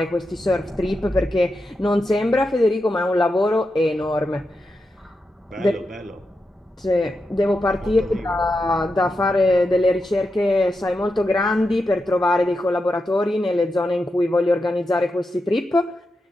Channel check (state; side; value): normal; both; correlation 0.88